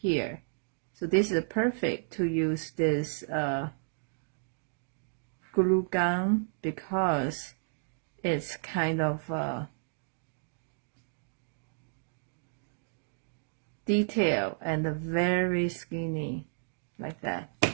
So this is perfect to use this glue gun because it's kind of detail and very skinny like that.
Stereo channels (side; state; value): left; silent; digital silence